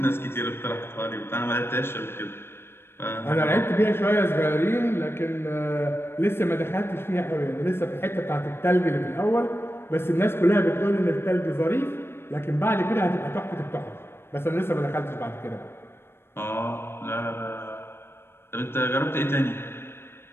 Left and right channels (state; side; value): late; right; 0.12 ms